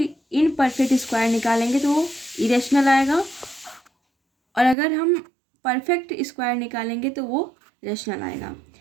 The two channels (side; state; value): left; drops out; at 4.8 s